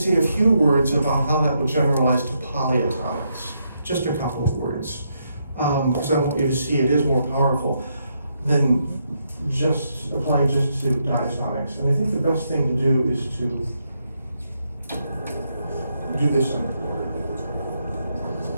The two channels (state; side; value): inverted; both; correlation -0.79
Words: a few words about how that would generalize to polyatomics. Just a couple of words, because I want you to see it is more powerful than just applying just to diatomics. And I think the best thing to do is to do this on the board.